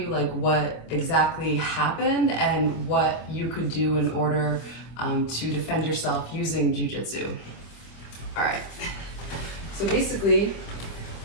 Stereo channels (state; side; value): late; right; 25 ms